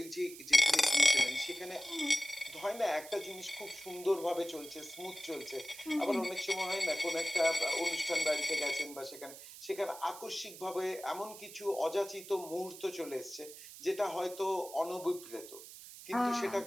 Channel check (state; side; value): noise; right; hiss, 15 dB below the sound